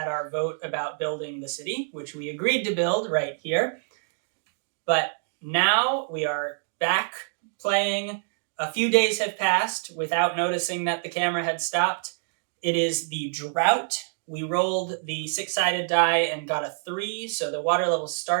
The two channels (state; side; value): silent; left; digital silence